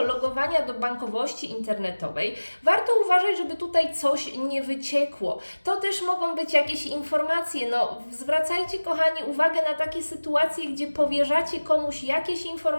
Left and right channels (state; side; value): inverted; both; correlation -1.00